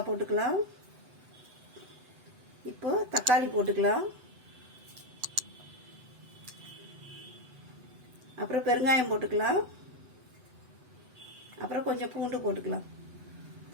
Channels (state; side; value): late; left; 8.0 ms